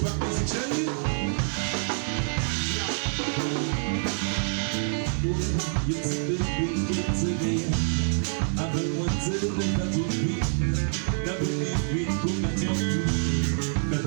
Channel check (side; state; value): left; silent; 60 dB below the other